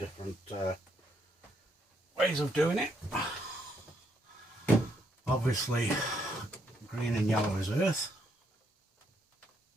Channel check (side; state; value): both; normal; correlation 0.74